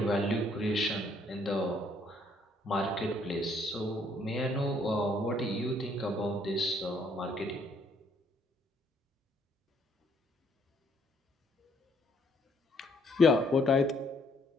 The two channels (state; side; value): normal; both; correlation 0.67